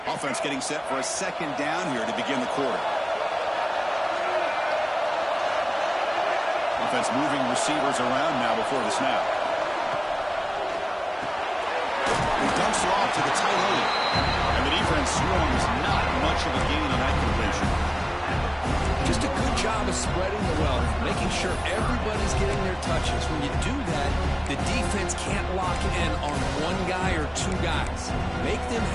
Offense getting set for a second down here to begin the quarter. Offense moving receivers around now before the snap. He dumps it off to the tight end. And the defense swarms not much of a gain on that completion. Just a good job of spreading the wealth, making sure everybody's getting their touches. When you do that, the defense can't lock in on one guy or two guys. Make them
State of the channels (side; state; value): both; identical; correlation 1.00